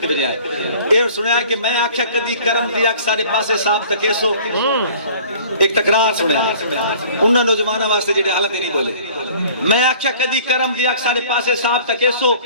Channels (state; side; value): inverted; both; correlation -0.49